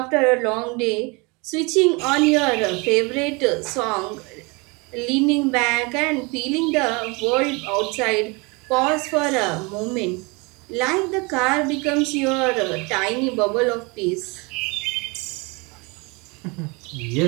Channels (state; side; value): quieter; left; 28.1 dB